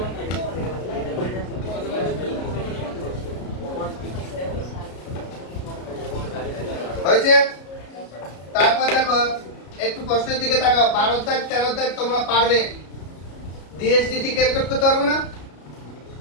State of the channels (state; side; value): late; right; 33 ms